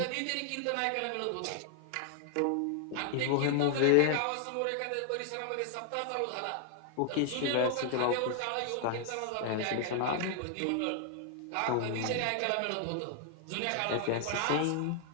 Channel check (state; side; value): different; both; correlation 0.00